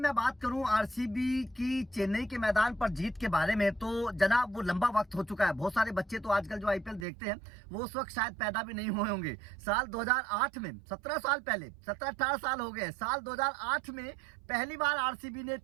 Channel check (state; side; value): drops out; left; at 7.1 s